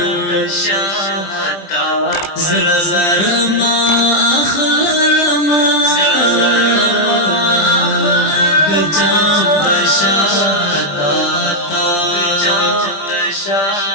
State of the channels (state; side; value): late; right; 20 ms